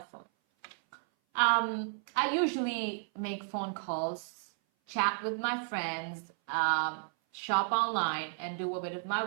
phone? I usually make phone calls, chat with my friends, shop online, and do a bit of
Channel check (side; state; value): left; silent; 56 dB below the other